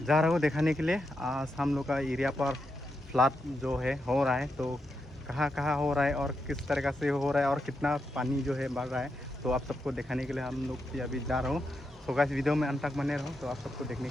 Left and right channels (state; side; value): normal; both; correlation 0.85